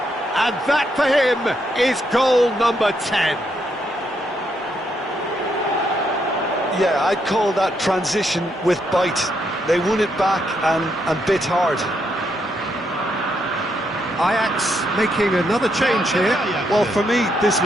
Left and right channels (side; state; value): both; normal; correlation 0.77